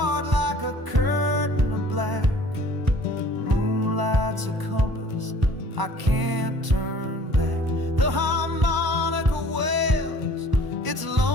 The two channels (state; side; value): late; left; 1.0 ms